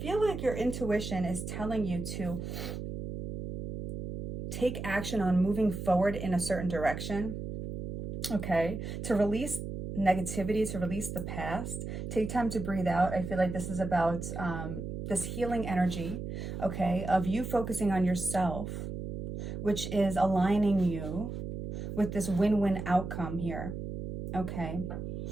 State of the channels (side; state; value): right; noise; hum, 6 dB below the sound